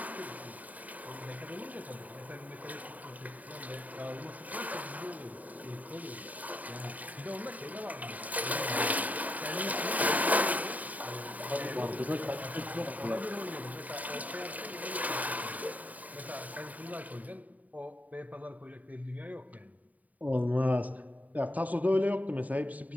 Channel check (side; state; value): left; late; 0.074 ms